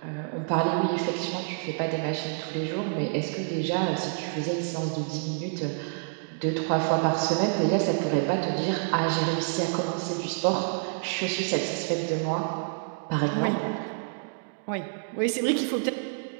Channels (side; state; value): left; silent; digital silence